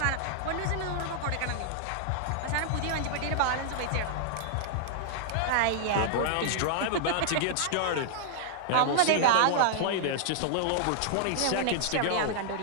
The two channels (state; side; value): different; both; correlation -0.01